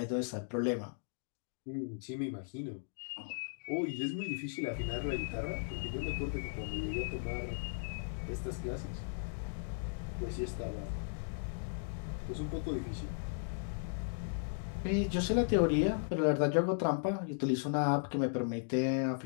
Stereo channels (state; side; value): silent; right; digital silence